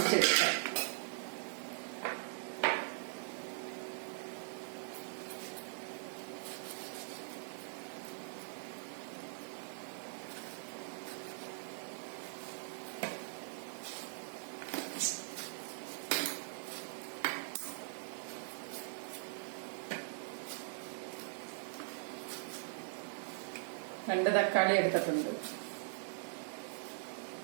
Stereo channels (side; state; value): left; silent; digital silence